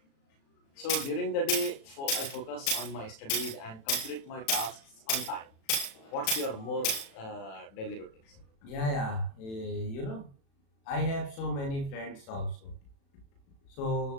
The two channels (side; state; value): right; late; 36 ms